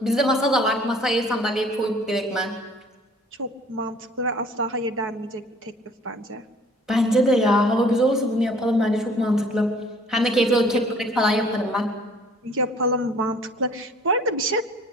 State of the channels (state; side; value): normal; both; correlation 0.54